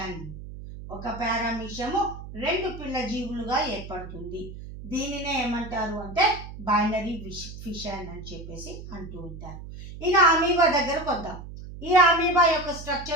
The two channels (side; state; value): right; noise; hum, 12 dB below the sound